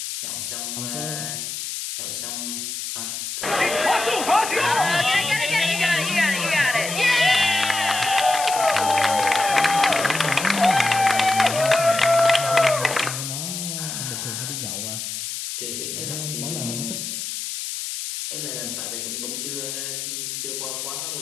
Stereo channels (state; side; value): noise; left; hiss, 5 dB below the sound